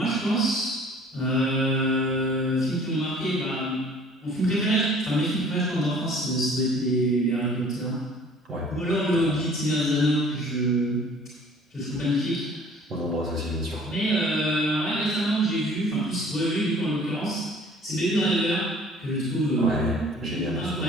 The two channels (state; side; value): normal; both; correlation 0.52